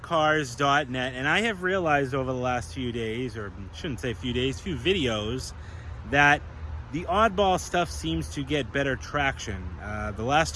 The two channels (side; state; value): both; identical; correlation 1.00